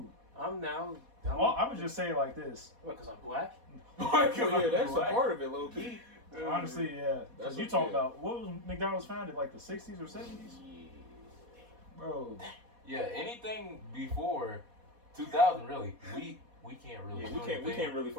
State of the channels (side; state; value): left; late; 4.1 ms